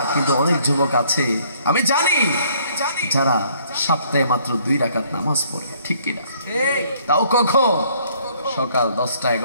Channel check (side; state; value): both; inverted; correlation -0.63